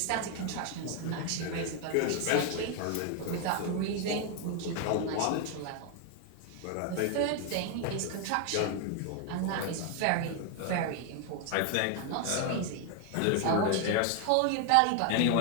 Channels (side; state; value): both; different; correlation 0.01